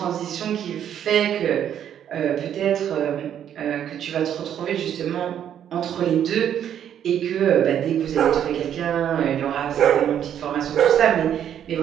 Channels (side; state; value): left; quieter; 9.7 dB